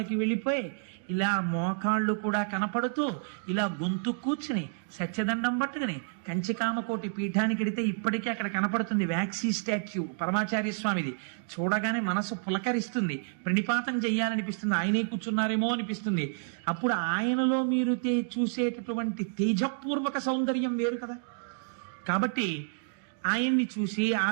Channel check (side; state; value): left; silent; digital silence